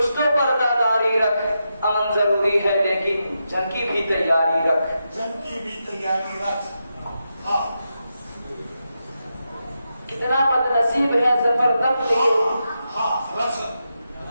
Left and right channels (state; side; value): inverted; both; correlation -0.87